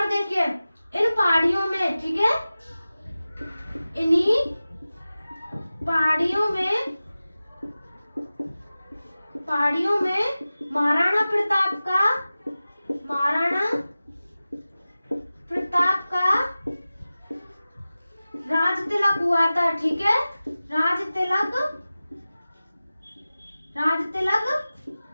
देखिए इन पहाड़ियों में, ठीक है, इन्हीं पहाड़ियों में महाराणा प्रताप का राज तिलक हुआ था, ठीक है, राज तिलक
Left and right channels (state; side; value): inverted; both; correlation -0.96